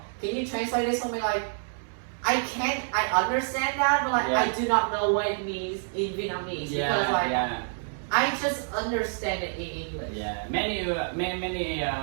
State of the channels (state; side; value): silent; left; 60 dB below the other